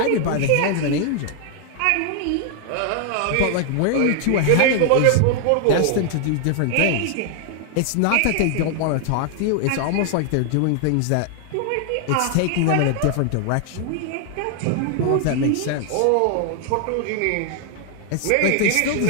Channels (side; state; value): both; different; correlation 0.00